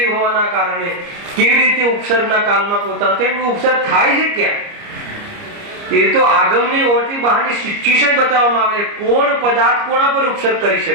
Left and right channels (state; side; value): late; left; 29 ms